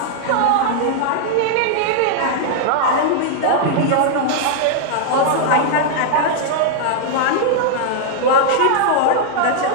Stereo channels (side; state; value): both; different; correlation -0.01